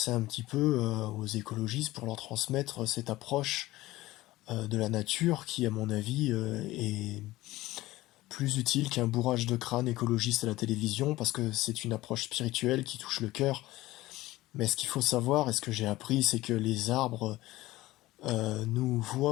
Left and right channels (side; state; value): right; quieter; 17.7 dB